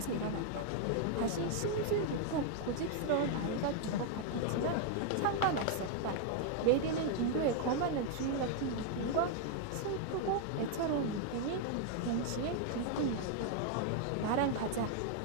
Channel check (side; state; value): both; different; correlation 0.00